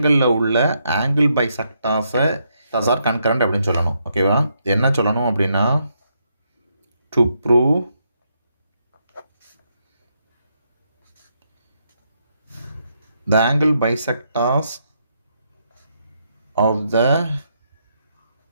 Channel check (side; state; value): both; inverted; correlation -0.78